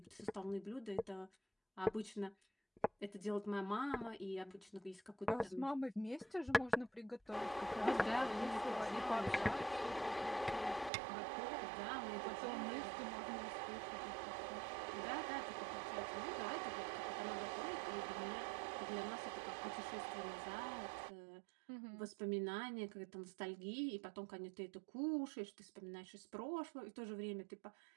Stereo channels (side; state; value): left; drops out; at 10.9 s